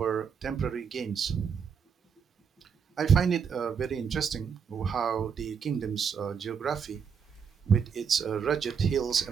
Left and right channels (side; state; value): left; quieter; 6.6 dB